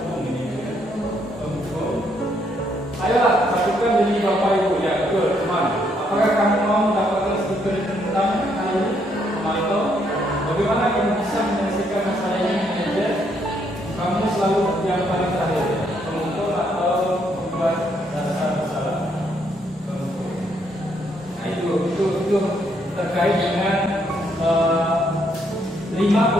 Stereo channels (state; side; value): normal; both; correlation 0.72